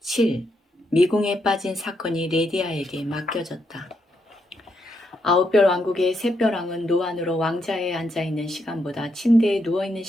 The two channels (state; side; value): normal; both; correlation 0.79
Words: 7. 미궁에 빠진 사건이 레디아에게 맡겨졌다. 아홉별 왕국의 샛별왕은 노안으로 왕자에 앉아있는 시간보다 침대에 누워있는